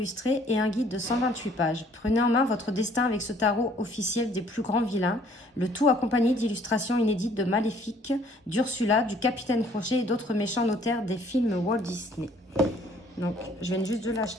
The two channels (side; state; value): both; normal; correlation 0.59